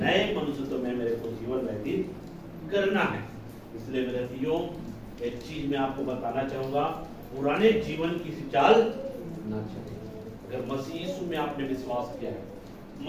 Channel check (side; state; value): both; identical; correlation 1.00